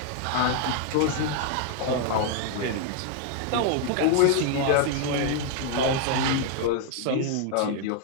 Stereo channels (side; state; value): both; different; correlation 0.00